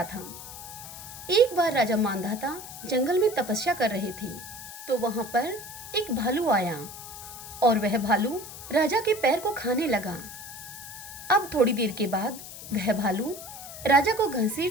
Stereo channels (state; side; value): noise; left; hiss, 12 dB below the sound